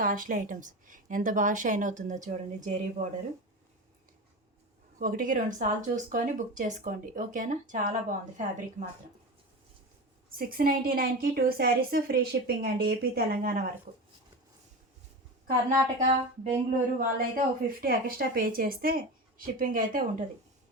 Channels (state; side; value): normal; both; correlation 0.26